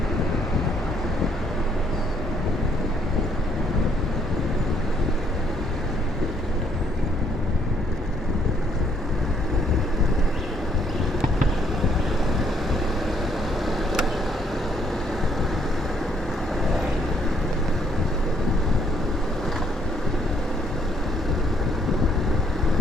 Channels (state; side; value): normal; both; correlation 0.68